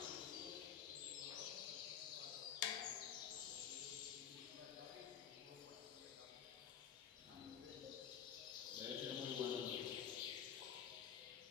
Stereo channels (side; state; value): right; quieter; 8.6 dB